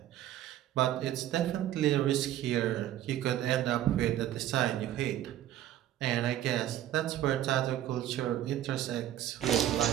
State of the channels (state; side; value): quieter; left; 12.4 dB